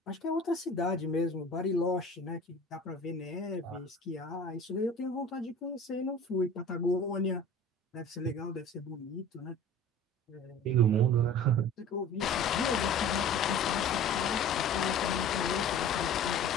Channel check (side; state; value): both; normal; correlation 0.42